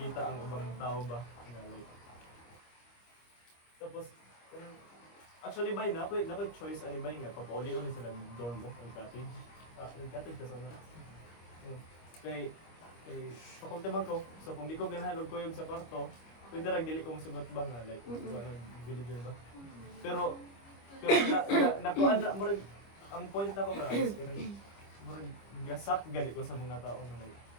ang ibang tao ba nga like. Tapos actually bay na ako choice ani bay nga papauli-uli sila ng dorm mo o cottage. Nag-cottage ka sana. Kay faculty man ko. So kung di ko ganahan og kuyog sa kwarto, pwede ra dili ko musugot ba nga like villager ba. Pero nakuan na murag ang point ako nga is kanang murag gasak gali ko sa mga tao na like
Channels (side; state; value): right; late; 25 ms